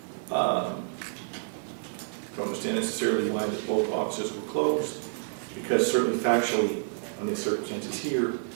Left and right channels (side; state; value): left; silent; digital silence